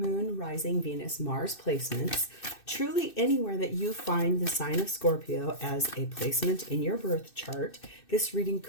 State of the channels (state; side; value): late; right; 2.6 ms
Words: Rising, Venus, Mars placements. Truly anywhere that you find the sign of Scorpio as a placement in your birth chart, this reading